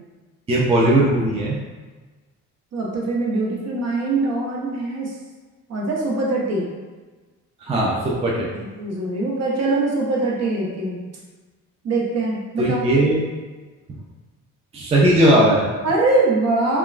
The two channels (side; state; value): both; normal; correlation 0.36